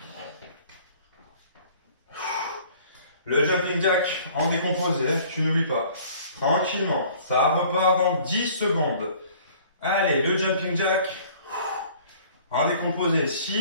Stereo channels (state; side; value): inverted; both; correlation -0.52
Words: Le jumping jack en décomposé, tu n'oublies pas. Tranquillement, ça repart dans 10 secondes. Allez, le jumping jack en décomposé.